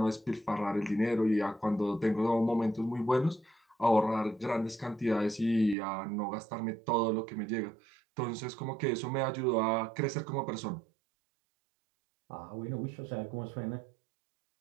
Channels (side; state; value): left; drops out; at 5.8 s